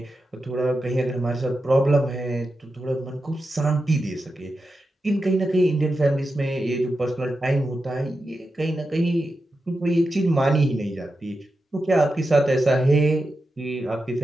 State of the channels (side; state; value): both; normal; correlation 0.90